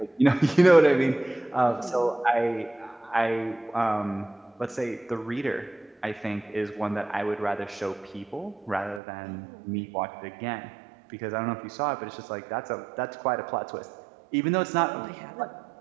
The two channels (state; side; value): drops out; left; at 9.0 s